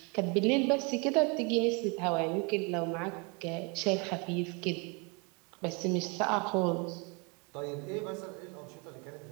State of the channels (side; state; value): left; quieter; 31.8 dB